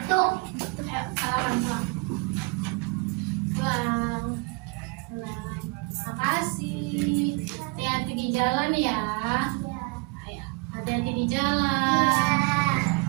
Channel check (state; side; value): quieter; left; 28.2 dB